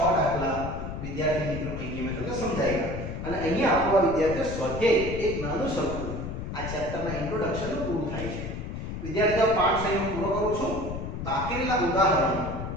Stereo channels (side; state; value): left; noise; rumble, 6 dB below the sound